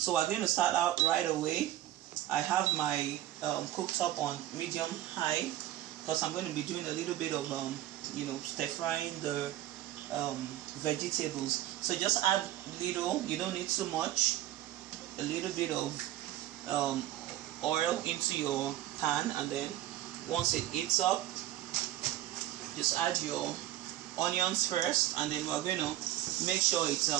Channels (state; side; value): quieter; left; 14.0 dB